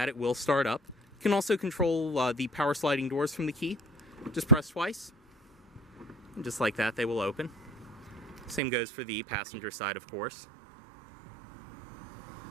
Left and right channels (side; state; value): left; drops out; at 8.6 s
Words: it will start up. You can also control the power sliding doors from the key. Just press twice, and just like that, they will open. Same goes for the passenger side, of course.